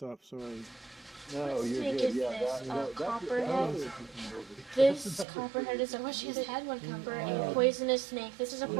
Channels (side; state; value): left; drops out; at 5.2 s